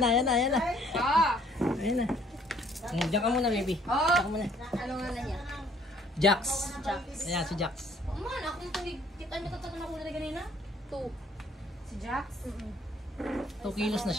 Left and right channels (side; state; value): both; normal; correlation 0.60